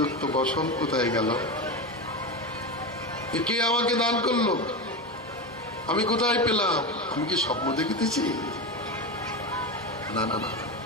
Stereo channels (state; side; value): normal; both; correlation 0.19